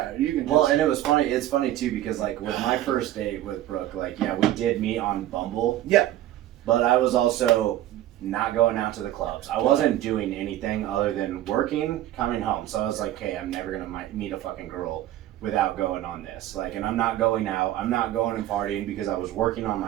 you can just Well, and it was funny. It's funny too because like with my first date with Brooke, like we did meet on Bumble. Yeah. But I was also not going out to the clubs. I wasn't doing anything other than working, coming home. So I was like, hey, I'm never gonna meet a fucking girl without going on this. Like, and I'm not going out. I'm not going and partying because I was working on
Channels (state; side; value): quieter; left; 13.6 dB